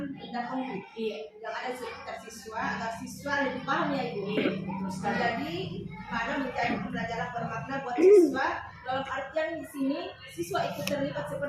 benda konkret. Iya. Yang ada di sekitar siswa agar siswa lebih paham ya Ibu. Iya, betul sekali. Jadi mana menjadi pembelajaran bermakna buat siswa, dalam artian di sini siswa ikut terlibat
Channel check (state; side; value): identical; both; correlation 1.00